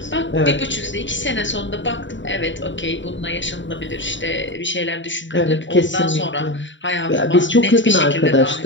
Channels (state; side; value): late; right; 0.54 ms